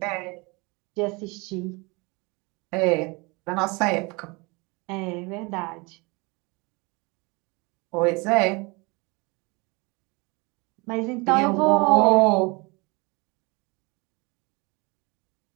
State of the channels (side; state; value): left; quieter; 27.3 dB